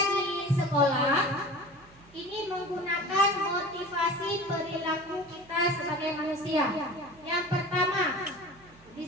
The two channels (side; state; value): right; noise; hum, 26 dB below the sound